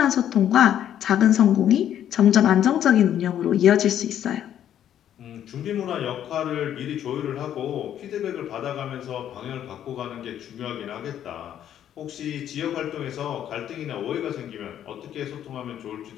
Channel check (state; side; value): quieter; right; 10.5 dB